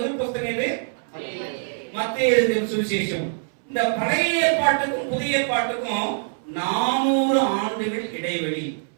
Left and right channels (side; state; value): left; silent; 63 dB below the other